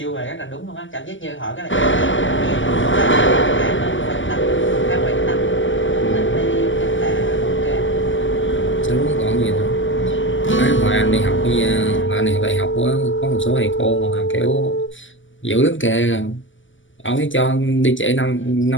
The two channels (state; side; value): late; right; 0.55 ms